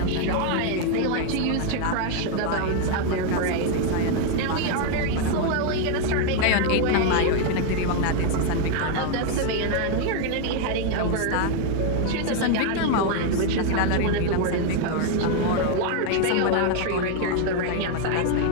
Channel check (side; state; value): both; different; correlation 0.01